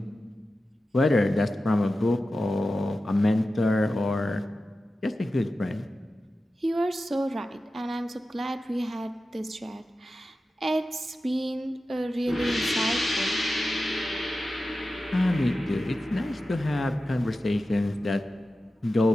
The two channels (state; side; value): normal; both; correlation 0.93